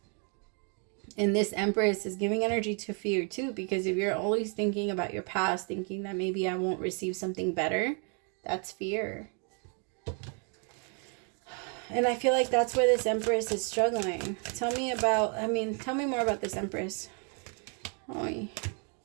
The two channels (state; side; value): quieter; left; 39.0 dB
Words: And this Empress is giving energy to fear too. Because if you're always thinking about your past, thinking that maybe I won't receive something better, that's fear. And I feel like that's where this Empress is struggling. Tell me more about this Empress. Oy.